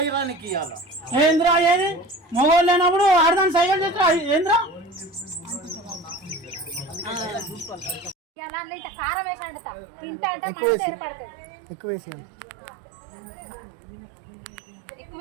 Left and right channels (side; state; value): left; drops out; at 8.2 s